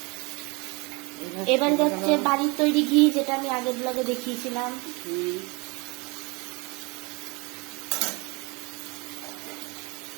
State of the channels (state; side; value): quieter; left; 27.7 dB